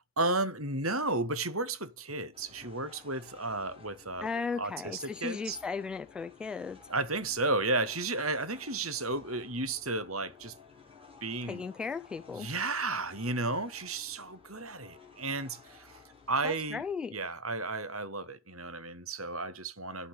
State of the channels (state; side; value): normal; both; correlation -0.05